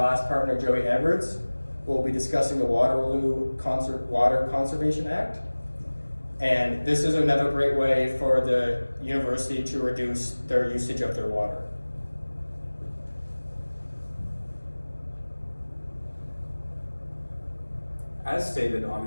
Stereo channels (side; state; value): both; inverted; correlation -1.00